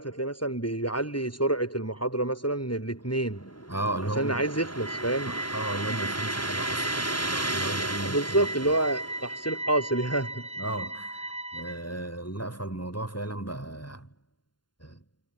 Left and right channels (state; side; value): late; right; 0.71 ms